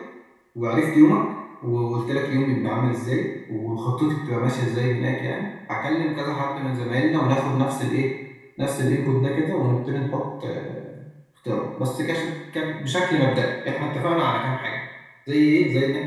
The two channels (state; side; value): identical; both; correlation 1.00